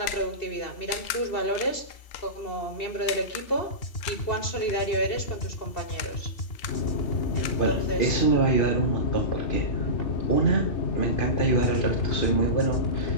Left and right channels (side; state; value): right; late; 3.4 ms